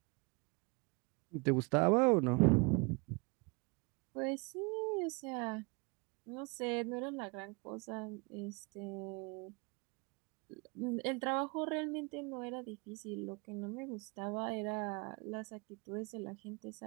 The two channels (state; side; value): quieter; left; 29.9 dB